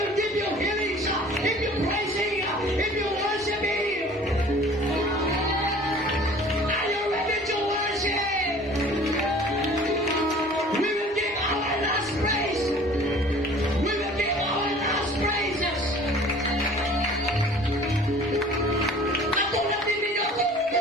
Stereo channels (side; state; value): both; normal; correlation 0.48